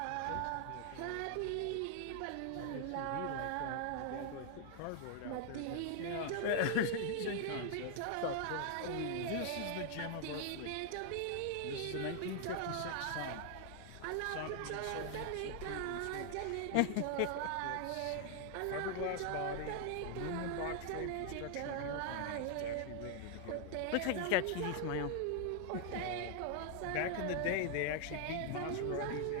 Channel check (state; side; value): different; both; correlation 0.00